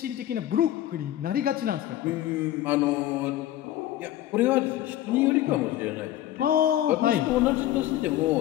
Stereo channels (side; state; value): right; quieter; 13.2 dB